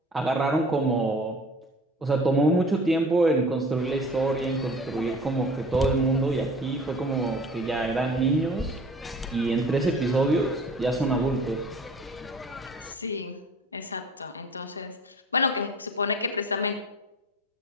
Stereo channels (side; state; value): both; normal; correlation 0.46